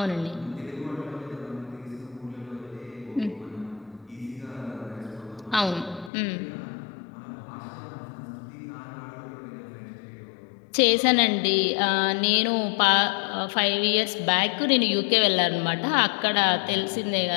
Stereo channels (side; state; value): right; drops out; at 6.1 s